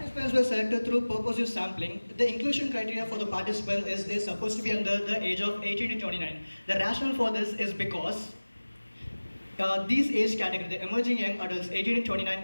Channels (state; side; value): inverted; both; correlation -1.00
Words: were selected through purposive sampling. The inclusion criteria for the participants is they're supposed to be under the age of 18 to 29. The rationale for this is because these age category, the emerging young adults, 18 to 29